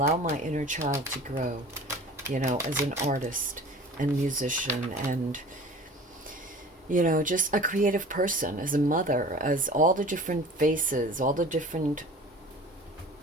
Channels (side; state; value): both; normal; correlation 0.41